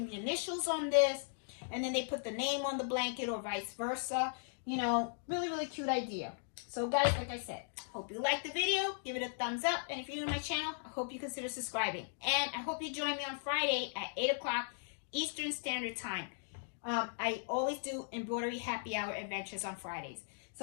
the initials on this, and then they put the name on the blanket or vice versa. You know, really, really cute idea. So guys, like I said, hope you liked the video. Give it a thumbs up. And if you're new to my channel, I hope you consider subscribing. And I hope you join me on Friday at 8 o'clock Eastern Standard Time. I always do embroidery happy hour adventures on Fridays.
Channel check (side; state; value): right; silent; digital silence